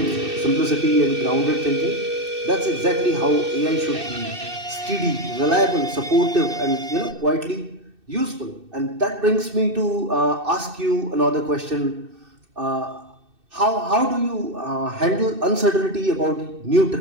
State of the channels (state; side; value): late; left; 2.6 ms